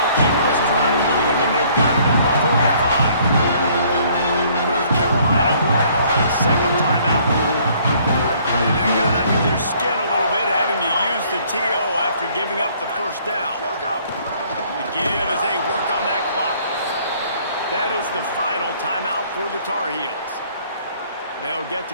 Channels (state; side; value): inverted; both; correlation -0.60